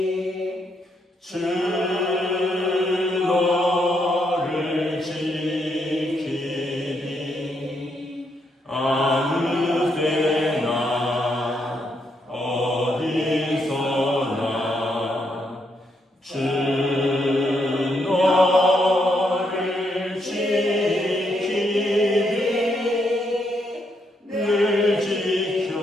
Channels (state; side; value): normal; both; correlation 0.77